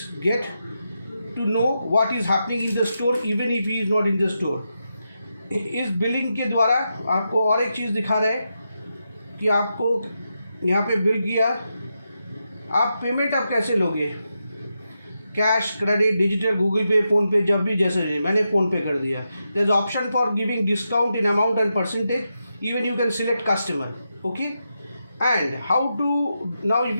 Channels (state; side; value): inverted; both; correlation -0.86